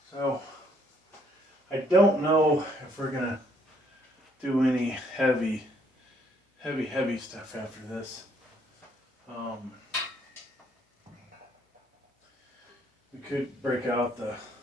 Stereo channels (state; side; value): normal; both; correlation 0.67